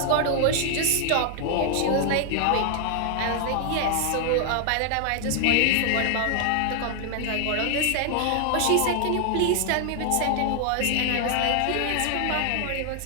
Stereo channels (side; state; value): both; different; correlation 0.00